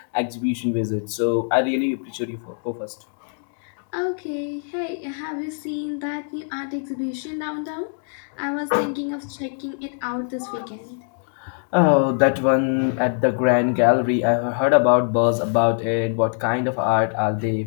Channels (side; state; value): right; silent; 63 dB below the other